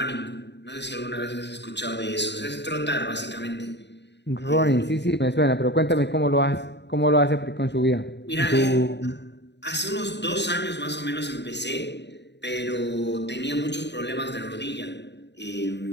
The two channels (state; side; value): late; right; 0.50 ms